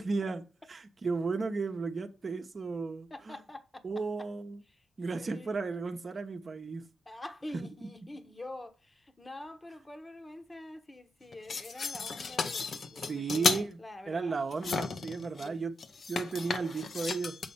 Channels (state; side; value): normal; both; correlation 0.85